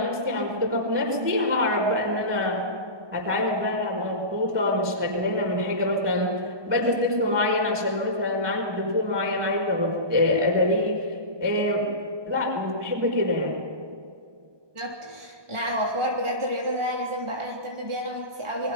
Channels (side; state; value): left; late; 1.2 ms